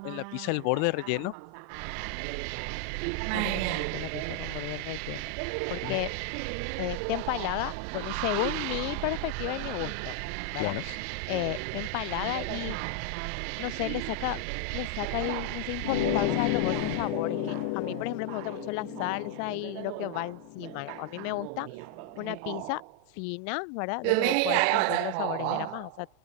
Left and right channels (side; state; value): both; different; correlation 0.00